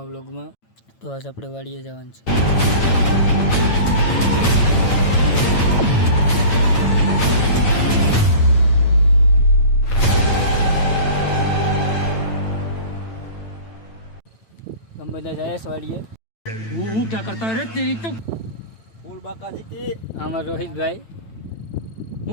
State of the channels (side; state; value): right; late; 9.0 ms